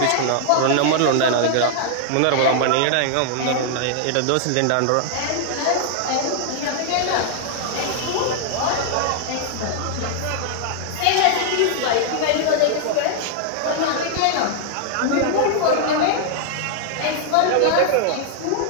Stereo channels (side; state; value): both; different; correlation 0.00